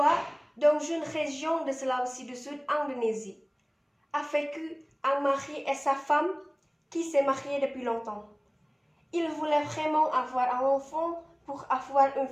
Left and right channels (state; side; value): identical; both; correlation 1.00